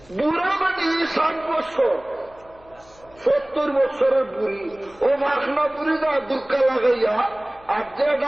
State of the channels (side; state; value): left; noise; hum, 27 dB below the sound